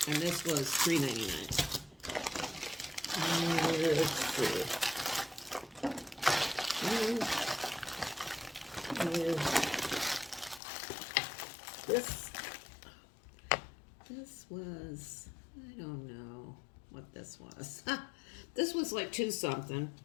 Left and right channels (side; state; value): right; drops out; at 10.6 s